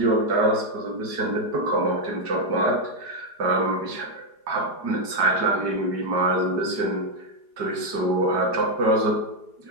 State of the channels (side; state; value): left; late; 4.8 ms